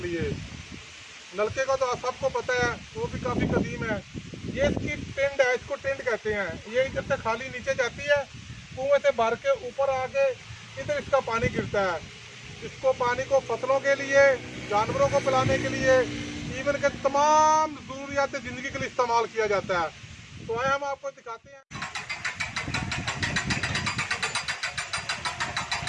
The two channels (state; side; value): identical; both; correlation 1.00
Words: नलके का तो सबको पता है, वो भी काफ़ी कदीम है। ये इसकी टिंड है, इसको टिंड कहते हैं। ये इधर से खाली नीचे जाती है, कुएं से भर के ऊपर आके इधर इसका पानी गिरता है। इसको पानी को फसलों के लिए, जानवरों को पिलाने के लिए, इवन के तमाम ज़रूरियात ज़िंदगी के लिए इस्तेमाल किया जाता है। तो आए हम आपको दिखाते हैं।